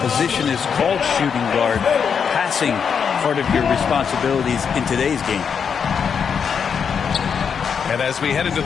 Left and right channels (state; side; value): quieter; right; 6.8 dB